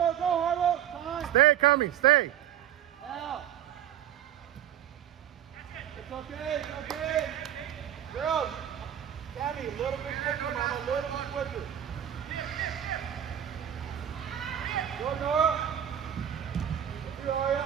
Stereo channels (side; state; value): left; quieter; 10.6 dB